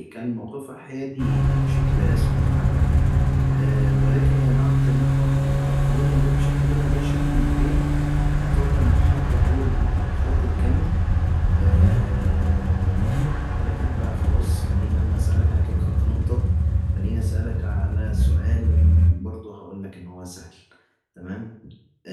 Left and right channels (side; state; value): both; identical; correlation 1.00